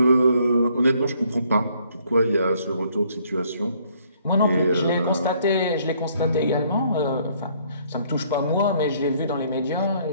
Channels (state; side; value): inverted; both; correlation -0.65